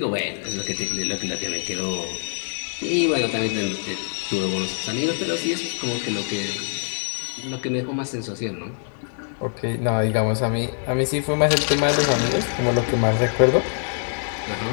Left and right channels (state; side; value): silent; right; 63 dB below the other